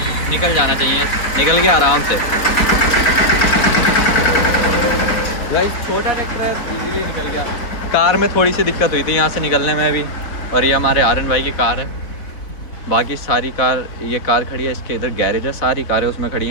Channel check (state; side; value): late; right; 4.1 ms